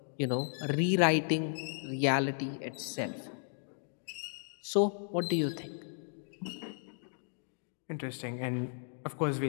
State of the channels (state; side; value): silent; right; digital silence